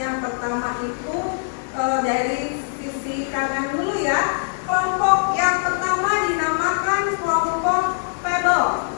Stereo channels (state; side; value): silent; right; digital silence